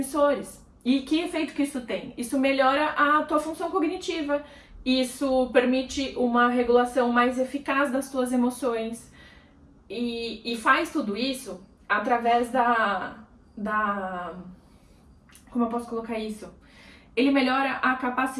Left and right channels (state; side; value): identical; both; correlation 1.00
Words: E que efeito que isso tem? Isso melhora a tua função cognitiva, isso permite uma regulação mais eficaz das tuas emoções, e faz tudo isso através como eu posso colocar isso? ele melhora a